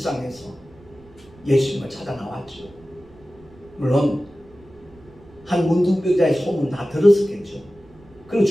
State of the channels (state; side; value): noise; right; rumble, 25 dB below the sound